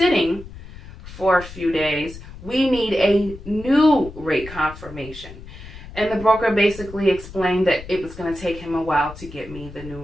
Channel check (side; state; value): left; noise; rumble, 15 dB below the sound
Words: for a few days, we need a new rate confirmation. And the broker basically explained that it was going to take him a while to get me the new